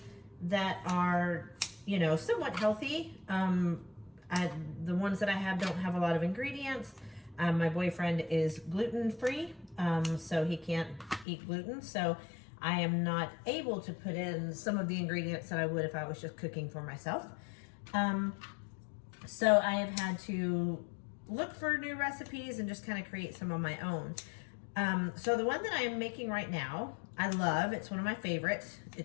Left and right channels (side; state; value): right; drops out; at 11.2 s